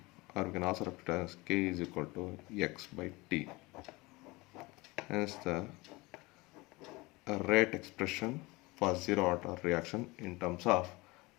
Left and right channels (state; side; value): quieter; right; 23.2 dB